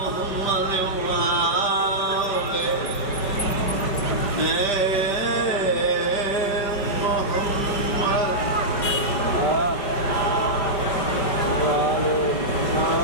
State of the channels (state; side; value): late; right; 5.0 ms